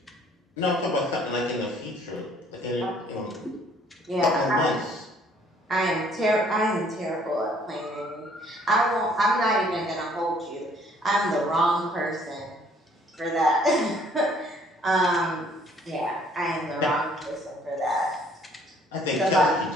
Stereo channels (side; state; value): both; normal; correlation 0.60